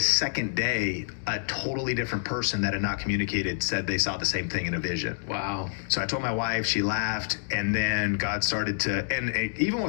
second day, a totally different person that had not communicated said they saw the same thing in a vision. Wow. So I told my wife, she laughed, and then God started to, and even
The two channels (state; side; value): silent; right; digital silence